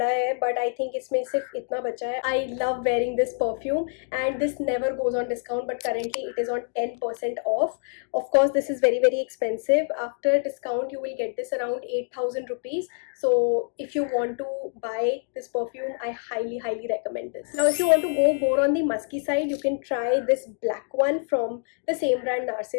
है, but I think इसमें सिर्फ इतना बचा है. I love wearing this perfume and this never goes on discount, but currently it is on 10% off. Of course, this is very expensive. After discount, you will get this around 8000 rupees. So if you want to buy this perfume, I highly recommend this. Now, if you want to go more on the musky side, you can try this black one from the same brand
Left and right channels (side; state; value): right; silent; 61 dB below the other